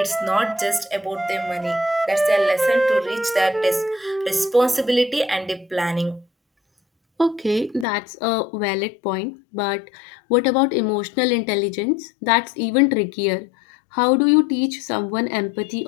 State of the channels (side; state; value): right; drops out; at 7.9 s